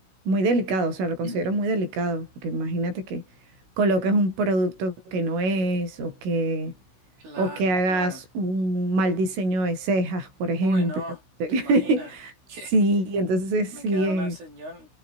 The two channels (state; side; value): late; left; 16 ms